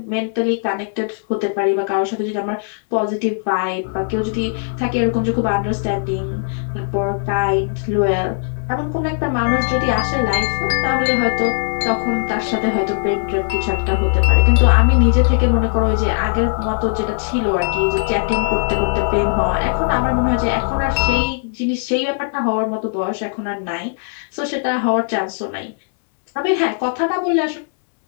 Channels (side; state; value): right; silent; digital silence